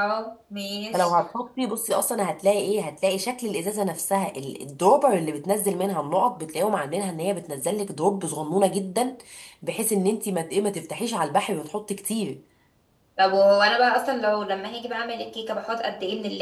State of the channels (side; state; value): both; identical; correlation 1.00